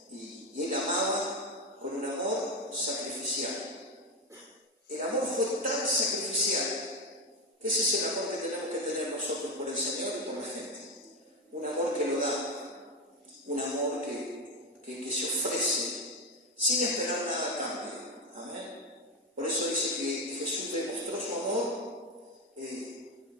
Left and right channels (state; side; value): normal; both; correlation 0.13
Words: Y Él amaba con un amor sacrificial. El amor fue tan sacrificial que ese es el amor que tenemos que tener nosotros por el Señor y por la gente. Un amor que lo da, un amor que se ofrece sin esperar nada a cambio. Amén. Por eso dice que Jesús demostró su amor